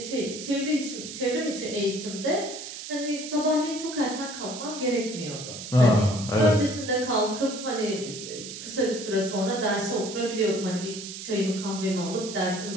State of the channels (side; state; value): right; noise; hiss, 9 dB below the sound